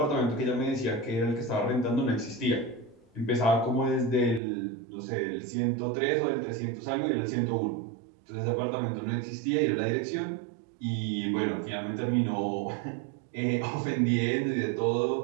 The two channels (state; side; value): drops out; left; at 4.4 s